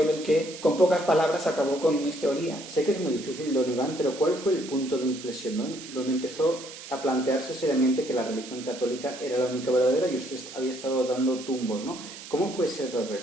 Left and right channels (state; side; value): noise; right; hiss, 14 dB below the sound